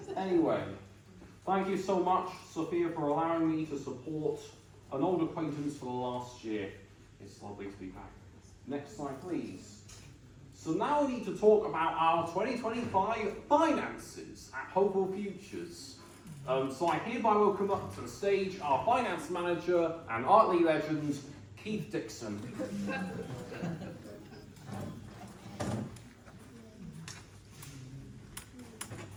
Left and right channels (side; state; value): both; identical; correlation 1.00